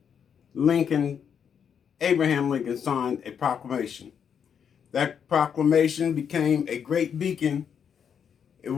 Abraham Lincoln signed a proclamation. That proclamation became a great beacon. It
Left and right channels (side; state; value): right; quieter; 7.6 dB